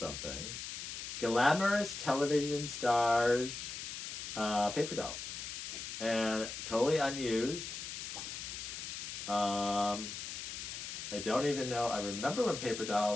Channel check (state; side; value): noise; left; hiss, 7 dB below the sound